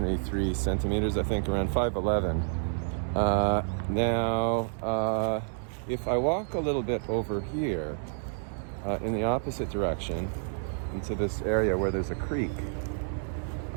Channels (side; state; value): left; silent; digital silence